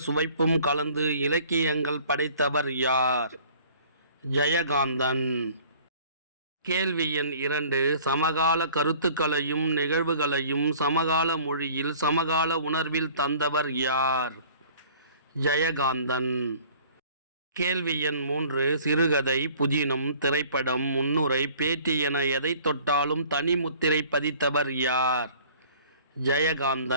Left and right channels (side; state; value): both; inverted; correlation -0.51